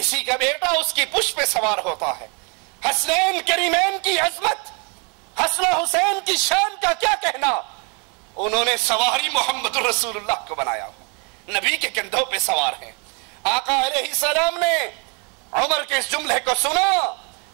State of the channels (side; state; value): left; quieter; 34.4 dB